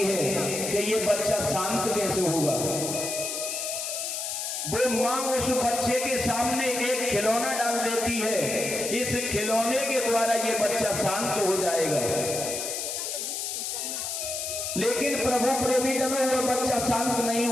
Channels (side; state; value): left; noise; hiss, 3 dB below the sound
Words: कि ये बच्चा शांत कैसे होगा। वो मां उस बच्चे के सामने एक खिलौना डाल देती है, इस खिलौने के द्वारा ये बच्चा शांत हो जाएगा। लेकिन प्रभु प्रेमी जनों वो बच्चा शांत नहीं